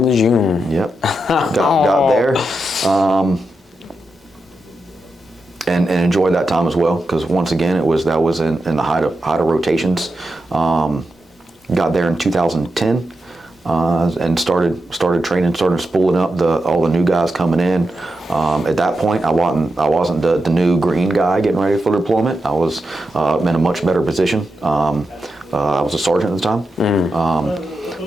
Lejeune. Yep. Got there, and enjoyed that time as well because once again that was in the height of rotations. Got there in 2010. And started training, started spooling up all the new guys coming in. At that point, I wasn't the new green guy getting ready for deployment. I was in a much better position. I was a sergeant at the time.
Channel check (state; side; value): normal; both; correlation 0.88